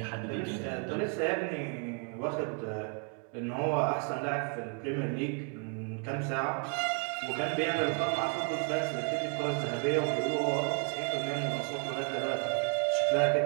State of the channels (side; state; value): left; quieter; 39.7 dB